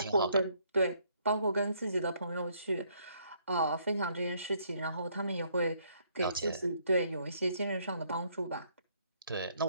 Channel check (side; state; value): both; inverted; correlation -0.68